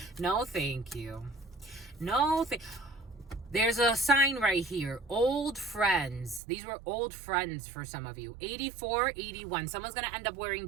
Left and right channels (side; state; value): left; drops out; at 6.4 s